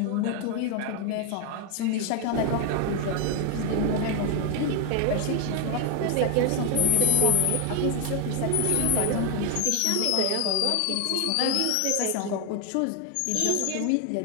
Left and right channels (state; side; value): different; both; correlation 0.00